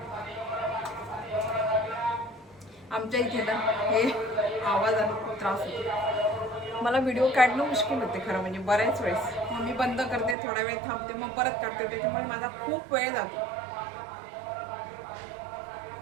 आमच्या इथे ना हे आवाजाने खूप त्रास होतो. मला व्हिडिओ काढणं मुश्किल होते खरं म्हणजे बऱ्याच वेळेस. मग मी बंद करते, थोडा वेळ थांबते, मग परत काढते. त्याच्यामुळे माझा खूप वेळ जातो.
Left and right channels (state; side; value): drops out; left; at 10.4 s